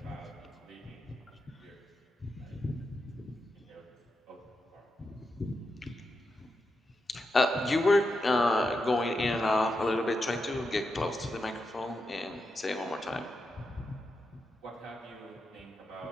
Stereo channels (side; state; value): both; normal; correlation 0.87